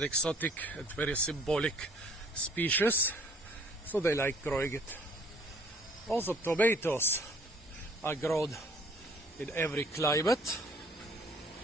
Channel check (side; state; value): both; normal; correlation 0.56